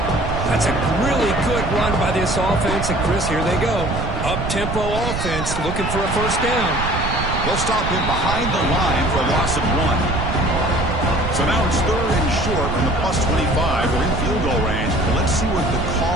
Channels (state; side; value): noise; right; rumble, 4 dB below the sound